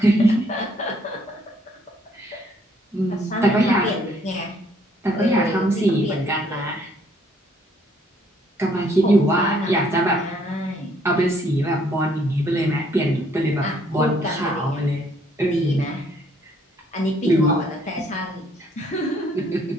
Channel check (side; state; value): both; normal; correlation 0.65